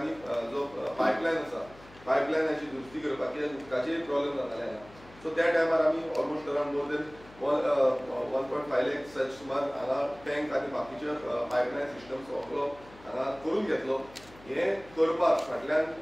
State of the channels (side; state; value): left; noise; hum, 22 dB below the sound